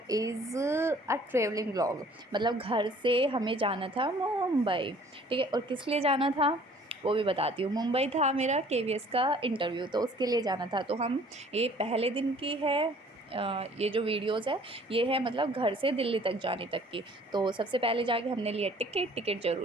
is a traveling vlog. मतलब घर से हमें जाना था मुंबई, ठीक है। और किस लिए जाना था वो भी बताती हूँ। मुंबई था मेरा केवीएस का इंटरव्यू, तो उसके लिए जाना था। तो हम ये पहले दिन की है, ये जो वीडियोस है ये है मतलब घर से दिल्ली तक जाने तक की। तो सबसे पहले जाके हमने लिया टिकट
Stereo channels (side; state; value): both; normal; correlation 0.54